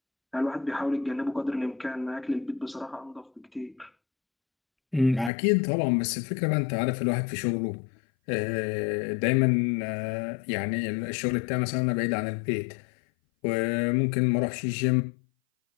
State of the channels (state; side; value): drops out; right; at 5.3 s